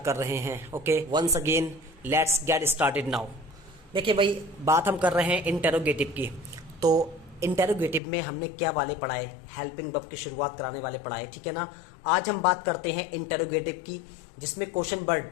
कर रहे हैं. Okay, once again let's get started now. देखिए भाई, बात हम कर रहे हैं इंटेरोगेटिव की. तो इंटेरोगेटिव में हमने क्या वाले पढ़ाए? हेल्पिंग वर्ब की शुरुआत कराने वाले पढ़ाए, ठीक है ना. आज हम बात करते हैं इंटेरोगेटिव की, जिसमें क्वेश्चन वर्ड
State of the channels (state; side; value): drops out; right; at 8.0 s